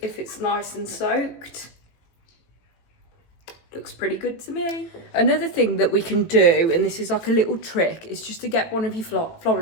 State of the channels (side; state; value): right; late; 18 ms